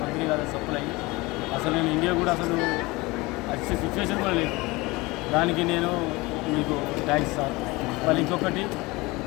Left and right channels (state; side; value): quieter; right; 22.7 dB